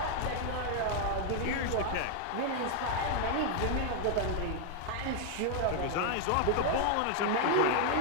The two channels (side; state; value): both; different; correlation 0.00